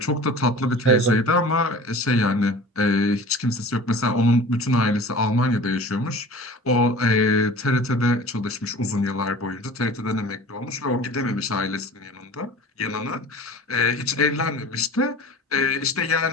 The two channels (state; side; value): normal; both; correlation 0.41